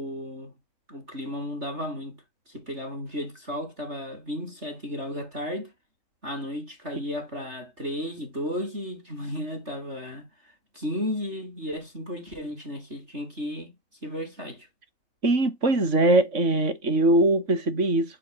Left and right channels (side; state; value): left; late; 3.3 ms